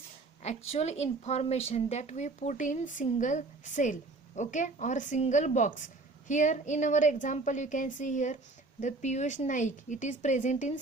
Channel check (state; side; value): quieter; left; 3.4 dB